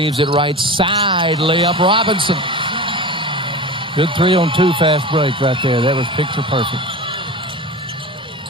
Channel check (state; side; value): normal; both; correlation 0.30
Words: it right side, layup Robinson. Good 3-on-2 fast break right there. That was picture perfect.